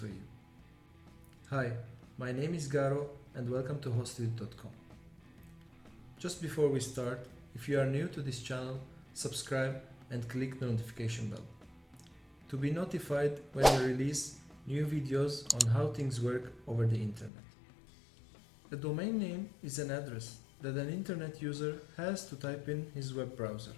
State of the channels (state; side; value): drops out; right; at 17.3 s